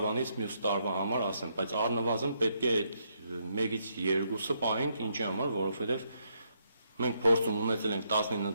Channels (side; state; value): both; inverted; correlation -0.76